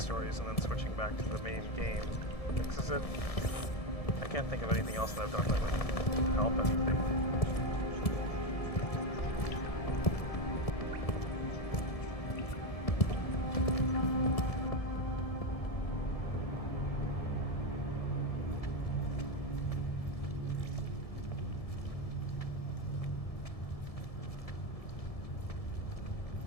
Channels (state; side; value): late; right; 1.7 ms